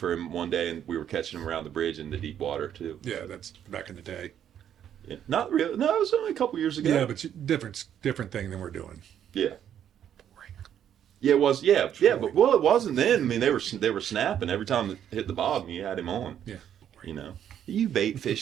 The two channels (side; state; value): left; quieter; 9.8 dB